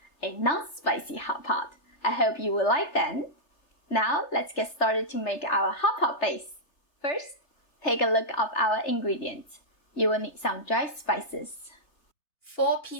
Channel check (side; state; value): right; late; 3.3 ms